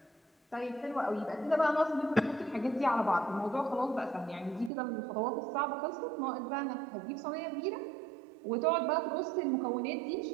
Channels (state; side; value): drops out; left; at 4.7 s